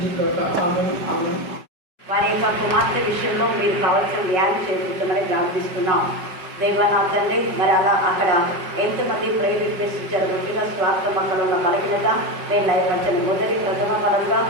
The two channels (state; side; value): late; left; 5.1 ms